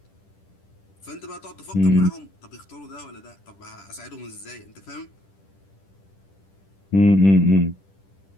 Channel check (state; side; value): late; right; 10 ms